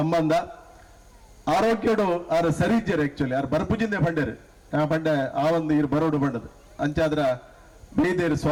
ಆರೋಗ್ಯಡು ಆರು ಸರಿ ಇಜ್ಜರು ಆಕ್ಚುಲಿ ಆರು ಬರ್ಪುಜಿಂದೆ ಪಂಡರು ಪಂಡೆ ಆ ಒಂದು ಇರು ಬರೋಡು ಬಂಡದು ಅಂಚಾದ್ರ ಬೇದೇರು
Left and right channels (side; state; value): both; identical; correlation 1.00